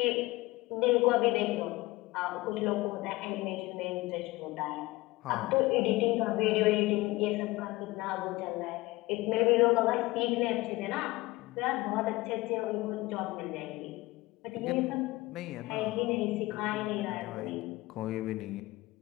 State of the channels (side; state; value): right; quieter; 20.3 dB